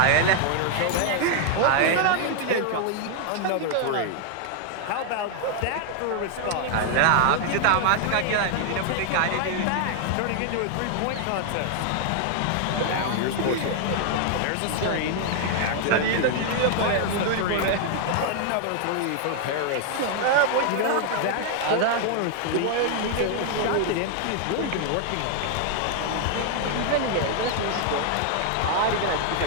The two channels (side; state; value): both; different; correlation 0.00